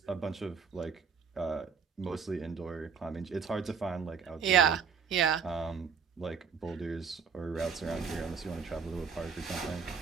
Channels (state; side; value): quieter; left; 6.1 dB